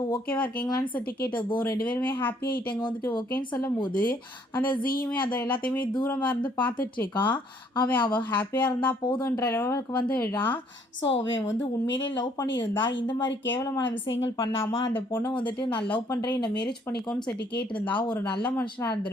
ஓகேவா இருக்கீங்களான்னு சொல்லிட்டு கேட்டதும் ரெண்டு பேருமே ஹாப்பி ஆகிட்டாங்க. வந்துட்டு ஓகேன்னு சொல்லும் போது அந்த ஜீயுமே அதை எல்லாத்தையுமே தூரமாக இருந்து பார்த்துட்ருக்கான். அவள் ஹாப்பியாக இருந்தால் போதுன்ற லெவலுக்கு வந்துடுறான். ஸோ அவன் வந்து உண்மையிலே லவ் பண்ணியிருந்தா இந்த மாதிரி கேவலமான விஷயங்கள் பண்ணாமல் அந்த பொண்ணை வந்துட்டு நான் லவ் பண்ணுறேன் என்னை மேரேஜ் பண்ணிக்கோன்னு சொல்லிட்டு கேட்டிருந்தா ஒரு நல்ல மனுஷனாக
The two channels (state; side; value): normal; both; correlation 0.64